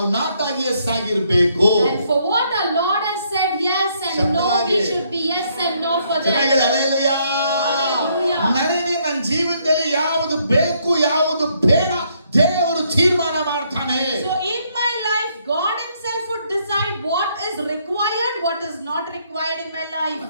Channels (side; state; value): both; inverted; correlation -0.71